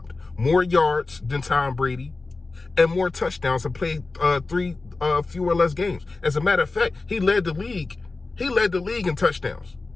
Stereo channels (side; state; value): right; quieter; 3.6 dB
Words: More yards than Tom Brady and more touchdowns and played fewer or less games. As a matter of fact, he led the league in touchdowns